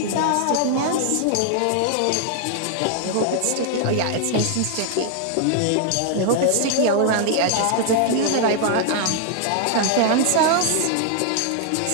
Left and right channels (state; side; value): different; both; correlation 0.00